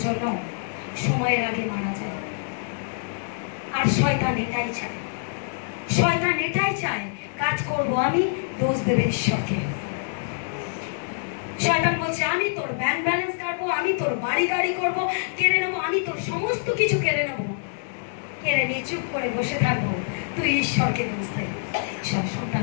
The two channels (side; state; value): right; silent; digital silence